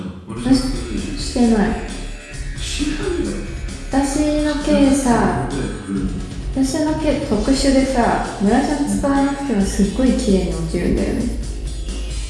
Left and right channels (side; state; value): both; identical; correlation 1.00